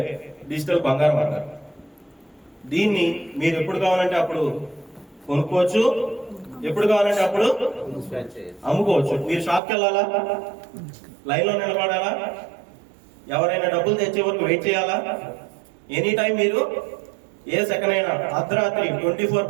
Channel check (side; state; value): left; drops out; at 9.6 s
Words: డిజిటల్ బంగారం అంటారు. దీన్ని మీరు ఎప్పుడు కావాలంటే అప్పుడు కొనుక్కోవచ్చు, ఎప్పుడు కావాలంటే అప్పుడు అమ్ముకోవచ్చు. మీరు షాప్కి వెళ్ళాలా, లైన్ లో నిలబడాలా, ఎవరైనా డబ్బులు తెచ్చే వరకు వెయిట్ చేయాలా? ఎనీ టైం మీరు ఏ సెకండ్ అయినా అర్ధరాత్రి